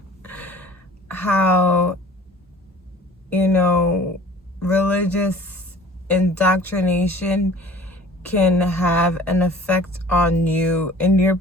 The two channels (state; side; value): normal; both; correlation 0.47